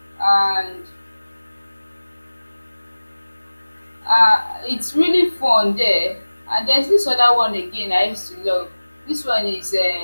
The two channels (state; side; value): inverted; both; correlation -1.00